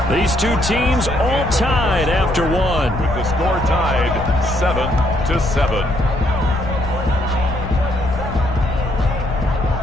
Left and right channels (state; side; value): noise; left; rumble, 7 dB below the sound